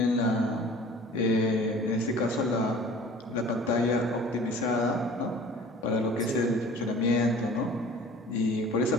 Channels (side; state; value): both; normal; correlation 0.46